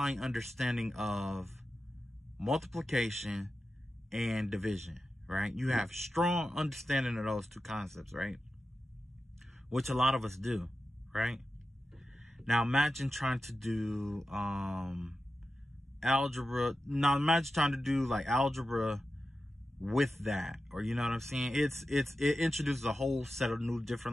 understanding of multiplication and division, right? You have strong understanding of those two concepts, right? Which a lot of us do, right? Now, imagine trying to do algebra. Now, imagine trying to do like algebra with that, or you know what I'm saying? It introduces a whole set of new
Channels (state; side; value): normal; both; correlation 0.92